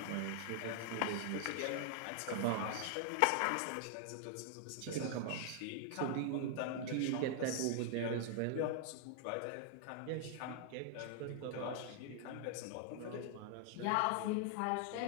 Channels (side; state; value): both; different; correlation 0.00